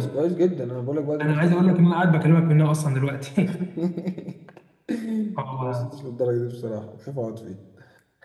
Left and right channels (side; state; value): both; identical; correlation 1.00